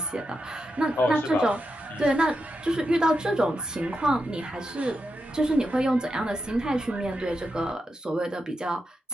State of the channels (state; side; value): normal; both; correlation 0.87